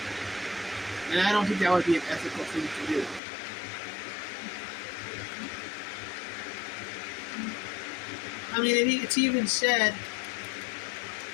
And I don't think that would be an ethical thing to do. I mean, it's even said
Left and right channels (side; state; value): right; drops out; at 3.2 s